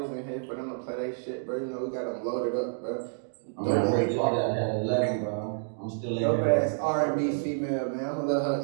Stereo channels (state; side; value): silent; left; digital silence